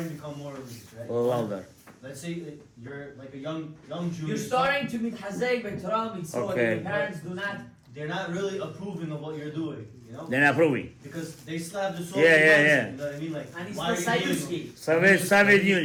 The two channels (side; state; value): both; identical; correlation 1.00